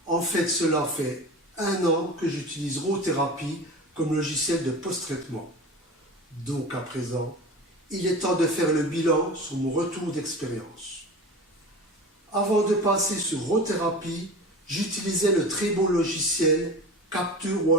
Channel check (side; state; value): both; normal; correlation 0.33